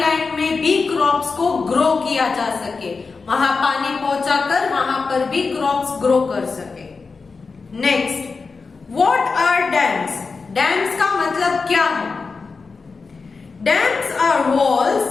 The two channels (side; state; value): right; quieter; 4.5 dB